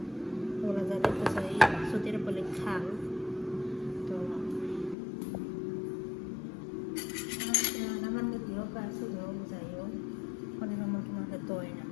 ওরা যা দেখতেছে এই সুতির বলে খাল। তো আমার মুরগি হোক আর শুধু হোক যাই হোক অনেক মুরগি মাঝে তো হয় না,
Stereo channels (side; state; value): right; drops out; at 5.0 s